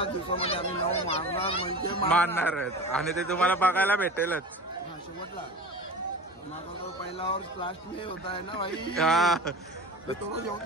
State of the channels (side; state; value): both; normal; correlation 0.34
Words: दिवसामध्ये आम्ही नाव मारणार म्हणजे मारणारच आणि ते तुम्हाला बघायला भेटेलच. हा शेवटला माझा तो पहिला वर्ष लास्ट मे होता आहे ना भाई तो